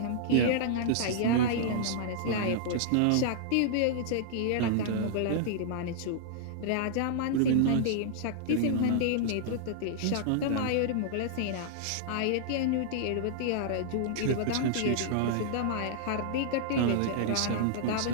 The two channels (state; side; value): different; both; correlation -0.01